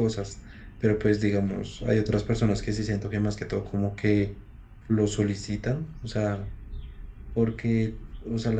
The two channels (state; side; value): identical; both; correlation 1.00